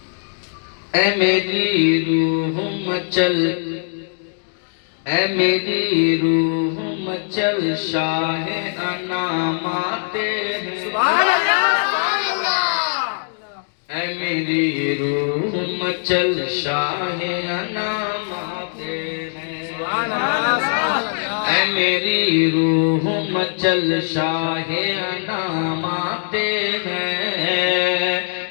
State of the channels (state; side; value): silent; right; digital silence